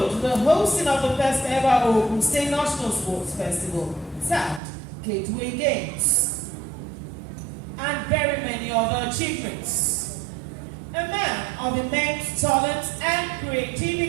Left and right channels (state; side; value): drops out; left; at 4.6 s